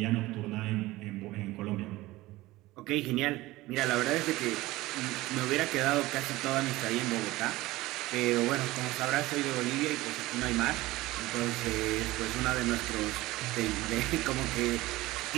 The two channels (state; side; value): quieter; left; 18.7 dB